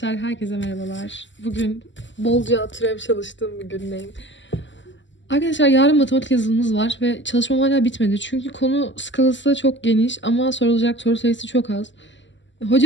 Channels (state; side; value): late; right; 0.54 ms